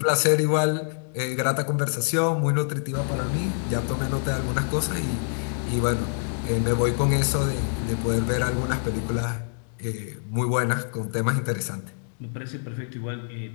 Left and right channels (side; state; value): right; silent; digital silence